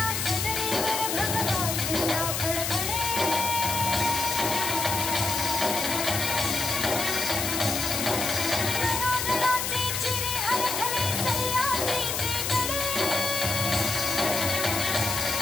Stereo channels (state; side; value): noise; left; hiss, 1 dB below the sound